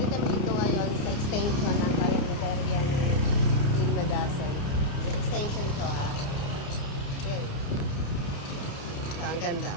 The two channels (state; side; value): late; right; 29 ms